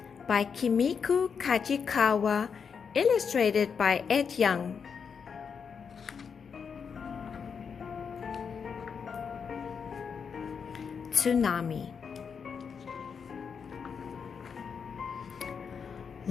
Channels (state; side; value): quieter; right; 6.3 dB